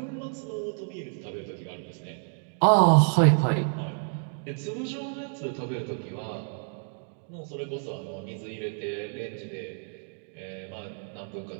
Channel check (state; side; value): silent; left; 59 dB below the other